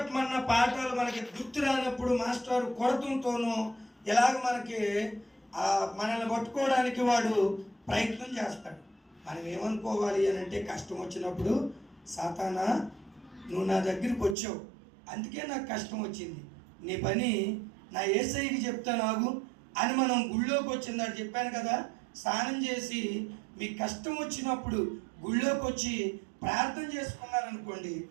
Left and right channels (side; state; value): left; drops out; at 14.4 s